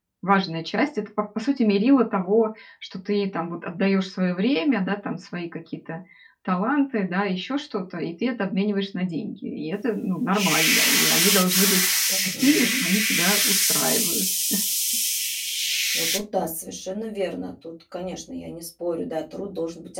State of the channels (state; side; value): identical; both; correlation 1.00